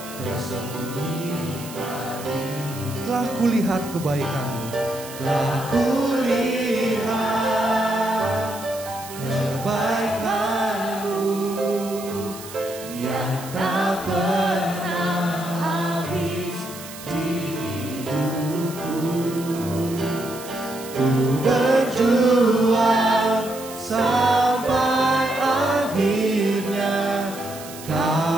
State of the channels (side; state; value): right; noise; hiss, 14 dB below the sound